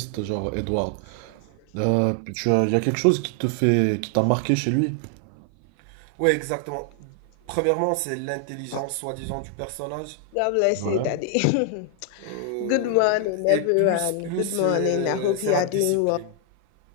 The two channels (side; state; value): both; different; correlation 0.00